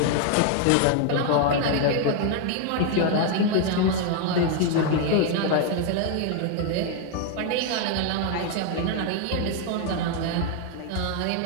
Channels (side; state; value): both; different; correlation 0.00